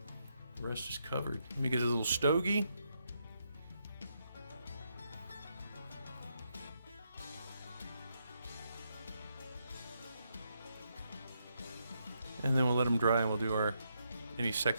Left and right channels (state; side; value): inverted; both; correlation -0.80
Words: the rest is covered. Let me get a little stogie. And then we'll let them dry, and we'll do any